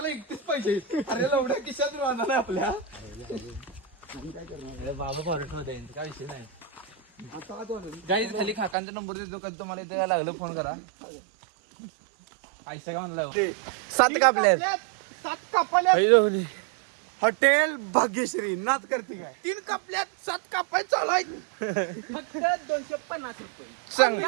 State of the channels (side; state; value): left; drops out; at 8.8 s